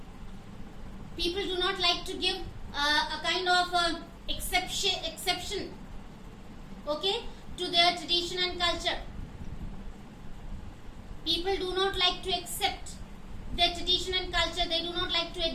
give a kind of exception, okay, to their tradition and culture. People do not like to accept their tradition and culture. They do not like to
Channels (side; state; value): both; identical; correlation 1.00